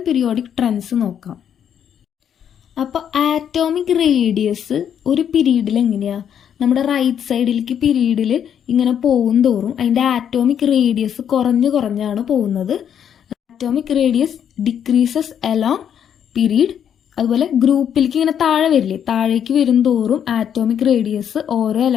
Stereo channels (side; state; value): right; quieter; 8.9 dB